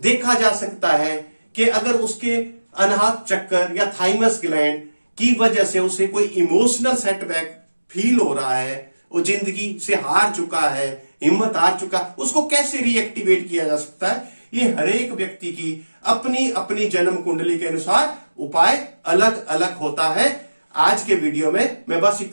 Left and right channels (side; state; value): both; inverted; correlation -1.00